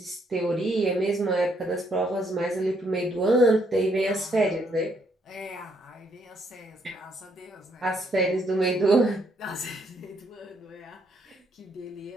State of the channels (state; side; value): normal; both; correlation 0.72